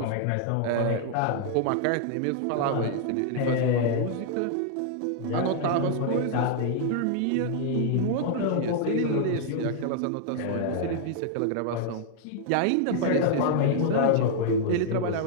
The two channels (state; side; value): different; both; correlation -0.01